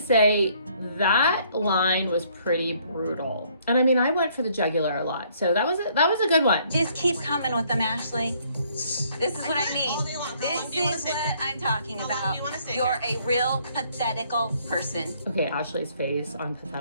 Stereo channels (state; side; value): inverted; both; correlation -0.64